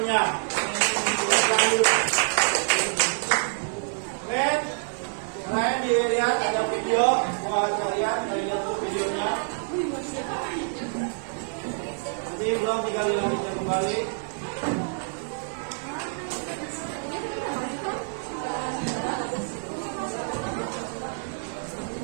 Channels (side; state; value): left; silent; digital silence